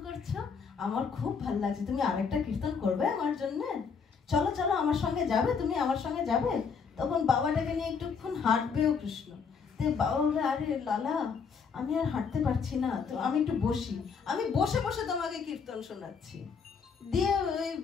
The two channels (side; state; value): right; quieter; 5.9 dB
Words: করছো, আমার খুব ভালো লাগছে, তুমি আরেকটা কীর্তন করবে আমার জন্য? চলো চলো আমার সঙ্গে যাবে, তুমি আমার সঙ্গে যাবে। তখন বাবাটাকে নিয়ে একটুক্ষণ হাঁটবেও কৃষ্ণ। তো বাবা বলবে, আরে লালা আমি আর হাঁটতে পারছি না, তো আমি একটু বসি, আমি বসে বসে তোমাকে কীর্তন শোনাচ্ছি। দিয়ে ওই